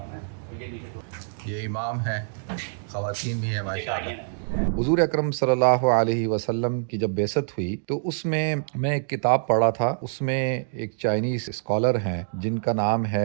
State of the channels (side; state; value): left; silent; digital silence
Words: یہ امام ہیں، خواتین بھی ہیں ماشاءاللہ۔ حضور اکرم صلی اللہ علیہ وسلم کی جب بعثت ہوئی تو اس میں ایک کتاب پڑھا تھا، اس میں ایک چائنیز اسکالر ہیں جن کا نام